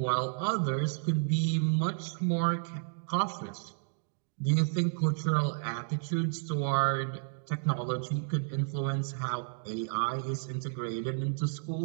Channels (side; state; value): left; silent; digital silence